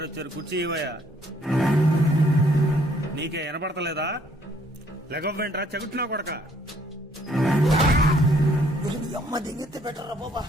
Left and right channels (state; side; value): normal; both; correlation 0.64